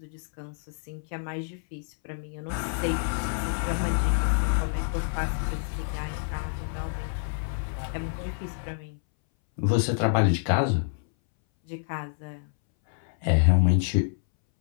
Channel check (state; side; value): silent; right; 60 dB below the other